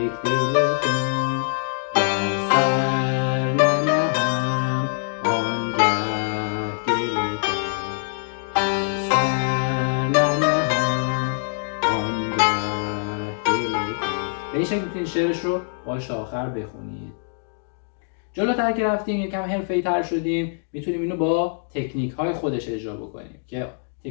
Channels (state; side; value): silent; right; digital silence